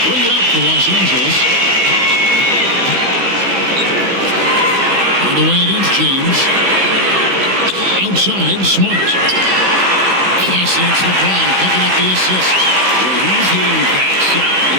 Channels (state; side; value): late; left; 16 ms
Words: bring it up to Los Angeles. Hardaway against James. Outside, Smart. Yes, and it's LeBron picking up the assist. When he's hitting that shot,